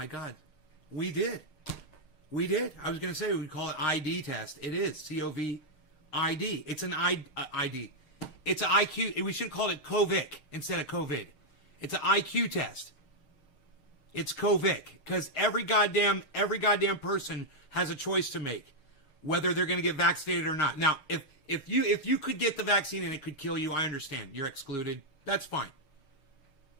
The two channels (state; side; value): late; right; 6.5 ms